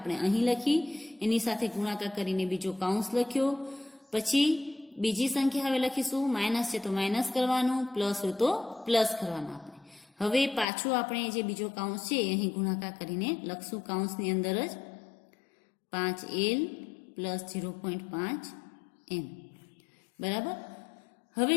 અહીં લખી, એની સાથે ગુણાકાર કરીને બીજો કાઉન્સ લખ્યો. પછી બીજી સંખ્યા હવે લખીશું, માઇનસ છે તો માઇનસ કરવાનું, પ્લસ હોય તો પ્લસ કરવાનું. આપણે હવે પાછું આપણે જે બીજો કાઉન્સ છે અહીં ગુણાકાર કરીને લખશું કાઉન્સની અંદર જ 5L પ્લસ 0.5M. બરાબર. હવે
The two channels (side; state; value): right; drops out; at 10.7 s